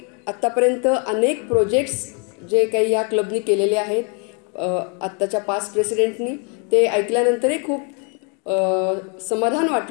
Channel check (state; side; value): quieter; right; 36.4 dB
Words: आत्तापर्यंत अनेक प्रोजेक्ट्स जे काही या क्लबनी केलेले आहेत आत्ताच्या पास्ट प्रेसिडेंटनी, ते ऐकल्यानंतरही खूप समाधान